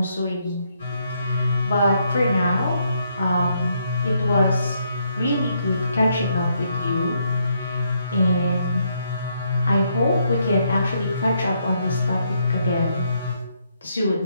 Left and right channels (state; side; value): inverted; both; correlation -0.75